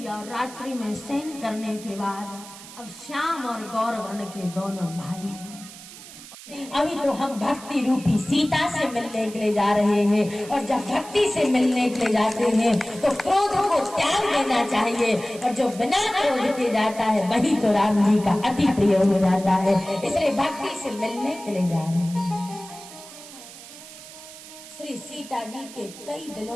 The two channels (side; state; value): right; noise; hiss, 16 dB below the sound